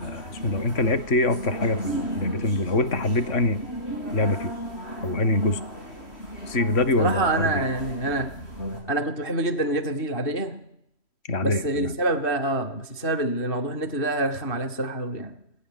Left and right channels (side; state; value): right; late; 3.1 ms